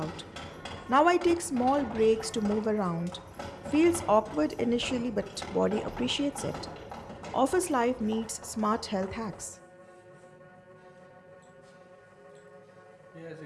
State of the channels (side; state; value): both; identical; correlation 1.00